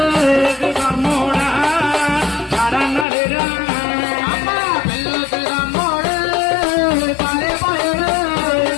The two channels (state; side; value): drops out; right; at 3.1 s